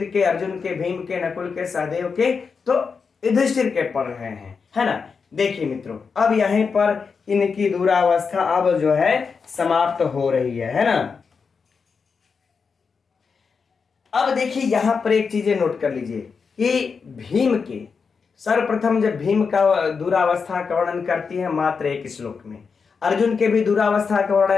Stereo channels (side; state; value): right; quieter; 5.4 dB